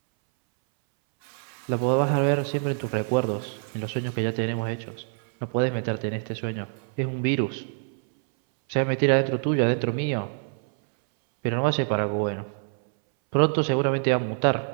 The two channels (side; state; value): left; silent; 61 dB below the other